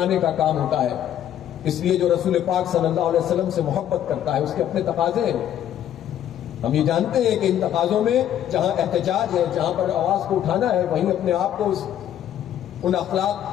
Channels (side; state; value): right; quieter; 10.8 dB